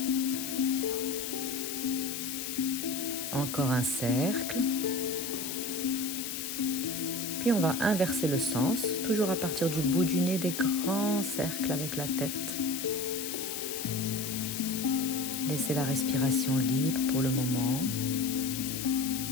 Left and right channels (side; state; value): left; noise; hiss, 5 dB below the sound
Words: Encore un cercle. Puis on va inverser le sens, toujours à partir du bout du nez, des grands cercles avec la tête. Laissez la respiration libre pour le moment.